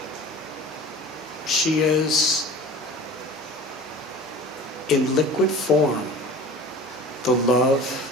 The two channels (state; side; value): normal; both; correlation 0.40